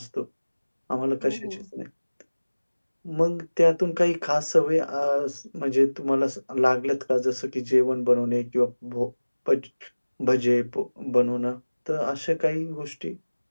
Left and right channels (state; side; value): inverted; both; correlation -1.00